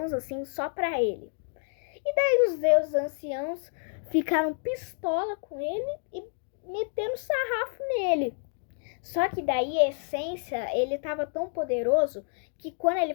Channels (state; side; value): silent; right; digital silence